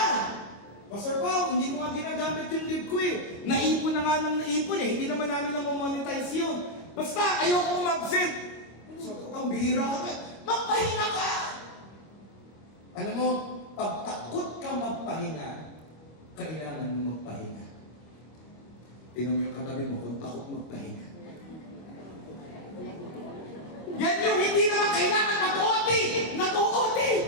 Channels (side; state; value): right; late; 25 ms